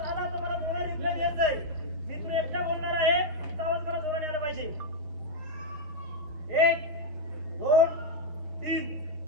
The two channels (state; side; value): late; left; 6.4 ms